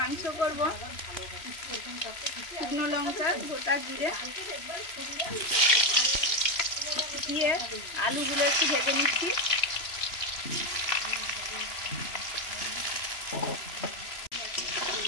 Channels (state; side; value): late; right; 3.0 ms